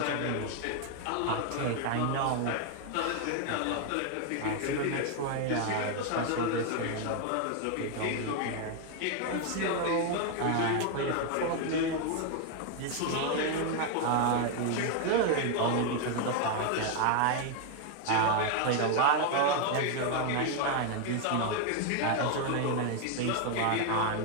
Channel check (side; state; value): both; different; correlation 0.01